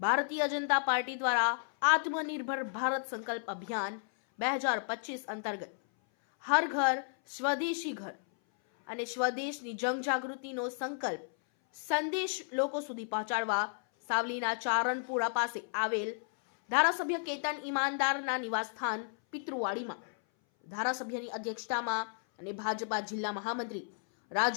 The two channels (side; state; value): right; silent; 56 dB below the other